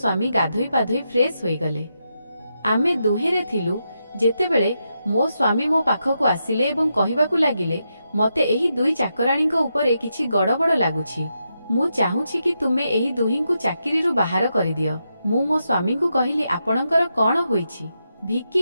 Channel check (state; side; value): inverted; both; correlation -0.84